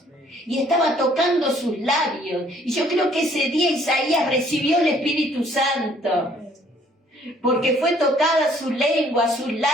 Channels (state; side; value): normal; both; correlation 0.61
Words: Y estaba tocando sus labios. Y yo creo que ese día Isaías recibió el Espíritu Santo. Porque fue tocada su lengua, sus